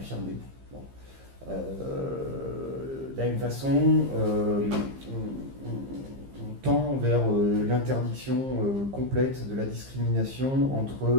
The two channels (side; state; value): left; late; 15 ms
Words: Bon. De la même façon, on tend vers l'interdiction complète de la discrimination